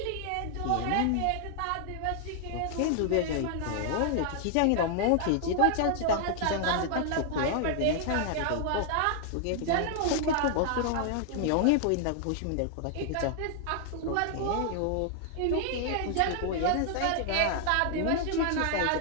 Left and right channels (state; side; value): different; both; correlation 0.00